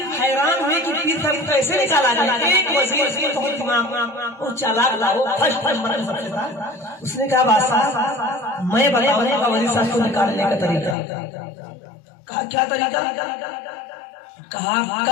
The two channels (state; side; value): drops out; right; at 11.0 s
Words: हैरान हुए कि पीर साहब कैसे निकाला जाए। एक वजीर वो चालाक था, वो फर्स्ट नंबर सबसे था। उसने कहा बादशाह मैं बताऊंगा वजीर साहब को निकालने का तरीका। कहा क्या तरीका? कहा